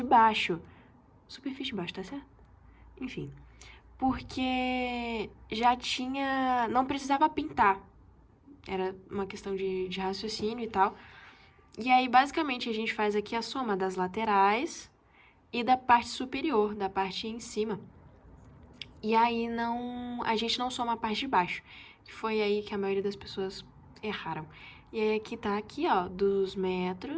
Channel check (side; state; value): both; identical; correlation 1.00